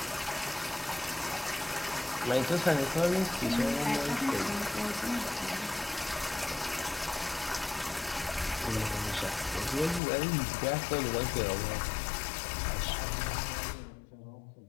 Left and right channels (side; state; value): right; drops out; at 10.0 s